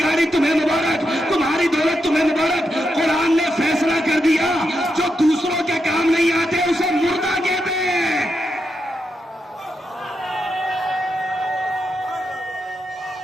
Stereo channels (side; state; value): both; normal; correlation 0.84